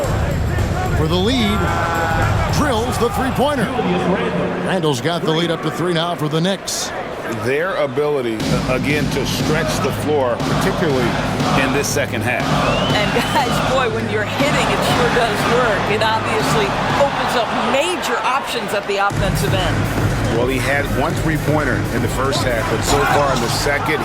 For the lead. Drills the three-pointer. Randle's got the lead up to 3 now for the Knicks. Their ability, again, to stretch the floor, particularly in this second half. And guys, boy, when you're hitting, it sure does work. It obviously opens up major options at the offensive end. Well, he had 1 3-pointer in the first half, but so far in the second,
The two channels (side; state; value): both; identical; correlation 1.00